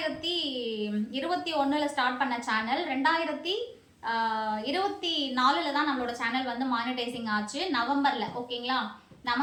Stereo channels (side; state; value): both; identical; correlation 1.00